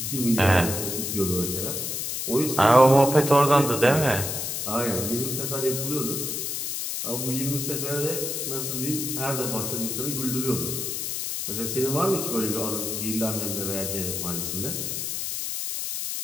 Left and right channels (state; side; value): noise; left; hiss, 3 dB below the sound